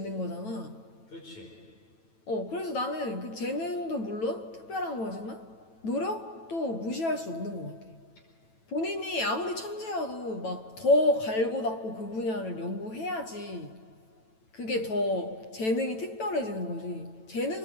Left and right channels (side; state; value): right; late; 9.1 ms